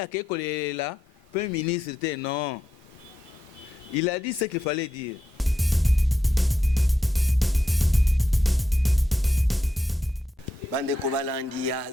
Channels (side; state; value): both; normal; correlation 0.85